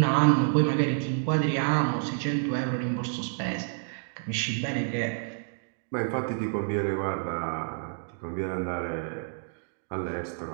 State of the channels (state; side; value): silent; left; digital silence